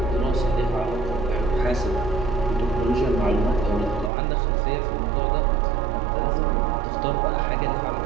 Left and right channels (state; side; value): drops out; left; at 4.1 s